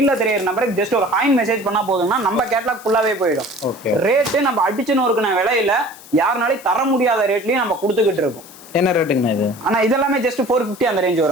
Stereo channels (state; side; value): noise; left; hiss, 20 dB below the sound